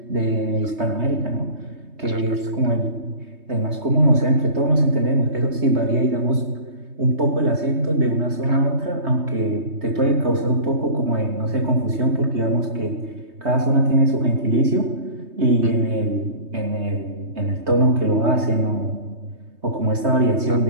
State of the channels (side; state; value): left; late; 3.2 ms